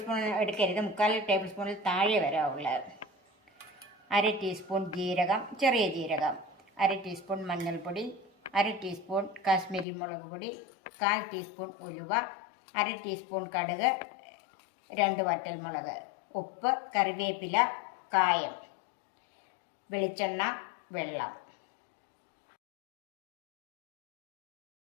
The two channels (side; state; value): right; drops out; at 9.9 s